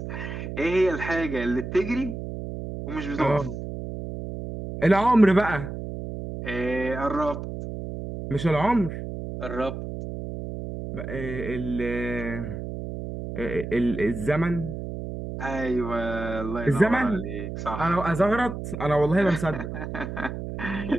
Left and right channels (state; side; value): noise; right; hum, 7 dB below the sound